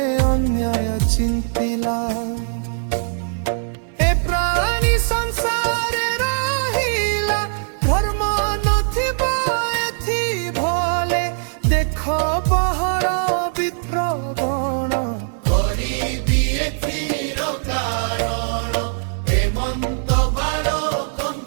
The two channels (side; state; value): left; silent; 65 dB below the other